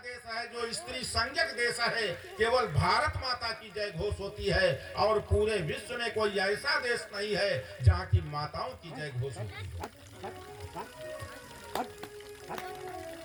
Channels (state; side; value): identical; both; correlation 1.00